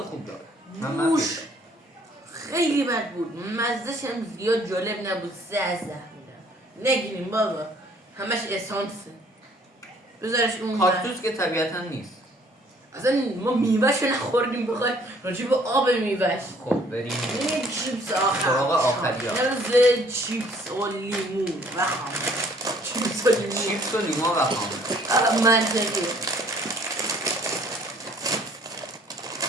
خوب داره بوش خیلی بد بود مزدش هم زیاد جالب نبود 3 از 10 میدم نگیریم بابا همش اسانسه بذارش اون کاکتوس که طبیعتا نیست اصلا ما میوهش رو نخوردیم بخوای راجع به آب میوهش خب بریم این چیپس آخر سراغ آخری ها. مرز چیپس و لیمون و خامه چیپس و لیمون چیپس و لیما و خامه منطقی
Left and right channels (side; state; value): both; normal; correlation 0.59